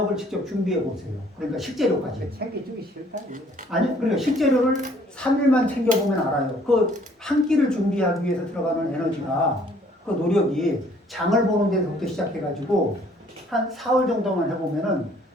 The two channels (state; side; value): normal; both; correlation 0.60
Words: 직접 준비해 보세요. 그러니까 식재료까지. 챙겨주기 싫다 이거. 아니, 그러니까 식재료를 3일만 챙겨보면 알아요. 그 한 끼를 준비하기 위해서 들어가는 에너지가, 그 노력이 장을 보는 데서부터 시작해가지고 한 4월 정도만 해보면은